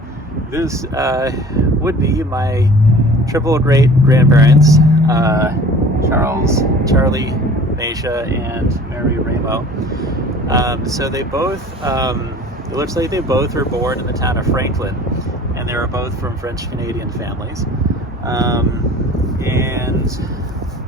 this would be my triple great grandparents, Charlie, Macia, and Mary Ramo. So they both, it looks like they both were born in the town of Franklin, and they were both from French Canadian families. And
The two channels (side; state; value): both; normal; correlation 0.45